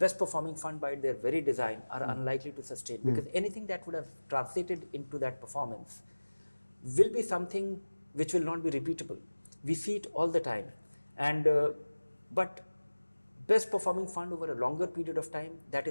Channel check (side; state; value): both; inverted; correlation -1.00